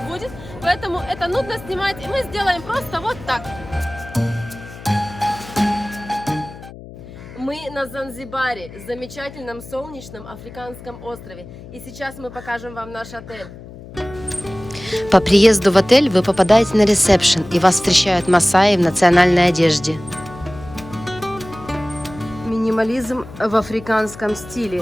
поэтому это нудно снимать, и мы сделаем просто вот так. Мы на Занзибаре, замечательном солнечном африканском острове. И сейчас мы покажем вам наш отель. По приезду в отель вы попадаете на ресепшн, и вас встречают масаи в национальной одежде. Минимализм в африканском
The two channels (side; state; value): left; noise; hum, 16 dB below the sound